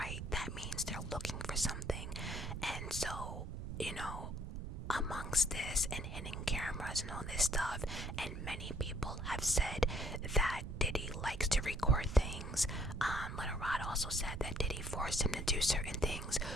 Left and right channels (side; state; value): right; noise; rumble, 6 dB below the sound